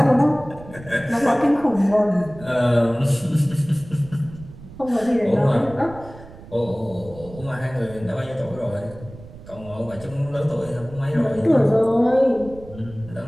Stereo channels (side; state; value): right; noise; rumble, 18 dB below the sound